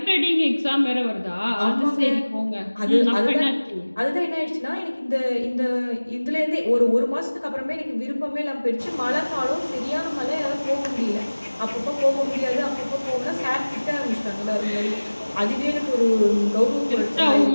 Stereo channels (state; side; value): inverted; both; correlation -1.00